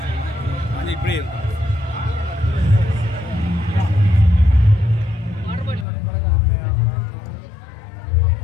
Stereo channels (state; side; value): drops out; right; at 5.9 s